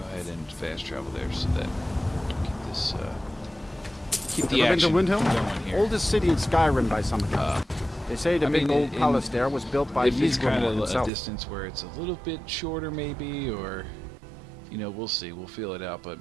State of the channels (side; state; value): left; drops out; at 11.1 s